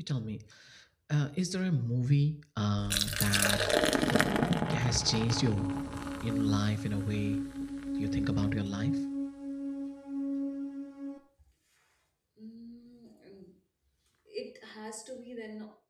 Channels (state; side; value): identical; both; correlation 1.00